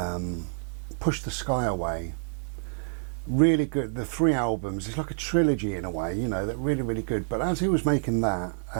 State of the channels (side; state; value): left; silent; digital silence